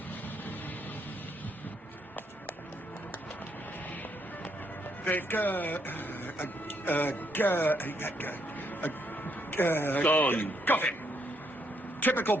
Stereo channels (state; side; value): normal; both; correlation 0.74